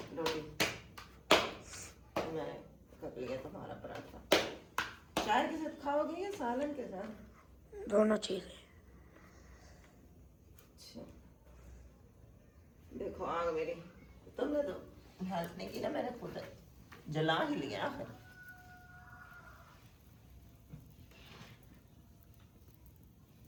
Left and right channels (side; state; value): both; identical; correlation 1.00